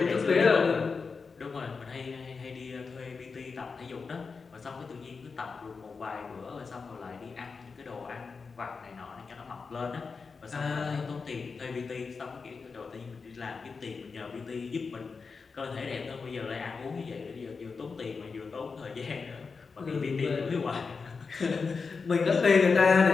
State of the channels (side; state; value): right; quieter; 4.9 dB